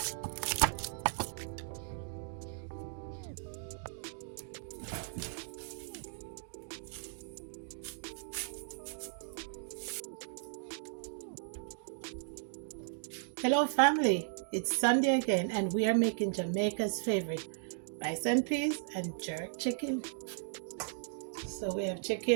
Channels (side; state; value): left; silent; digital silence